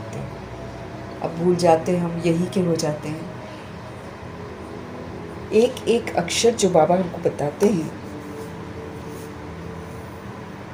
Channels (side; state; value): both; identical; correlation 1.00